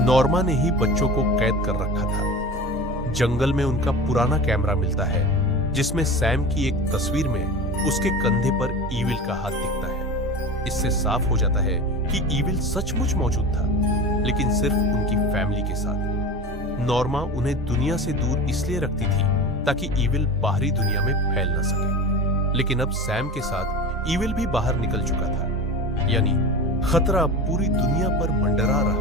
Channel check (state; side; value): normal; both; correlation 0.32